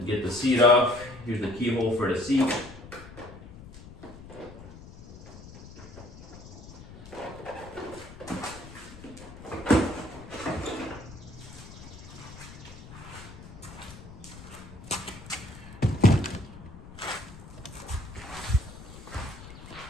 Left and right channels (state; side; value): noise; left; rumble, 16 dB below the sound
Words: Get the seat off. Here's the keyhole for the seat.